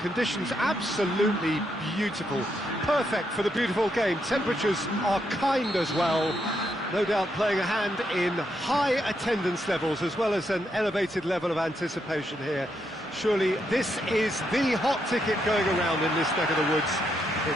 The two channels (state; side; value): normal; both; correlation 0.79